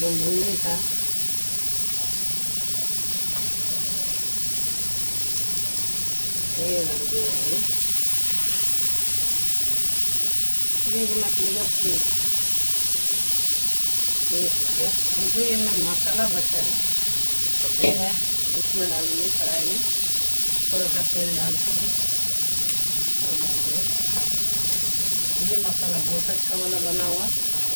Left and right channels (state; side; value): inverted; both; correlation -1.00